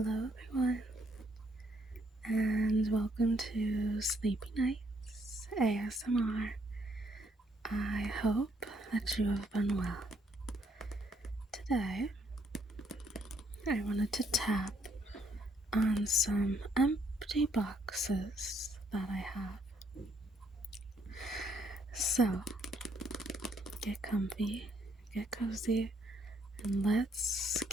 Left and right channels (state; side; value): normal; both; correlation 0.70